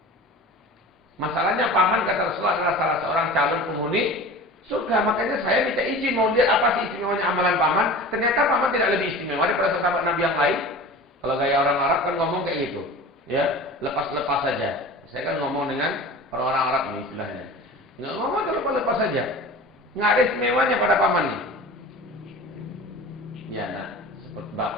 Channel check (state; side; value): normal; both; correlation 0.37